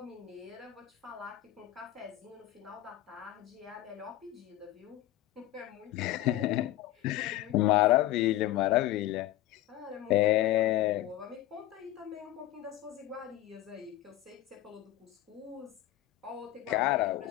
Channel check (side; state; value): right; quieter; 14.7 dB